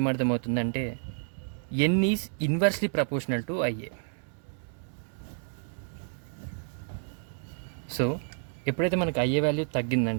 N is inversely proportional to IA. So ఎప్పుడైతే మనకి ఐఏ వాల్యూ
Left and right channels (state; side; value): silent; left; 58 dB below the other